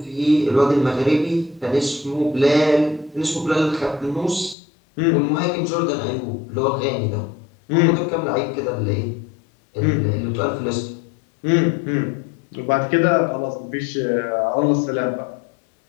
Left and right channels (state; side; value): drops out; right; at 4.5 s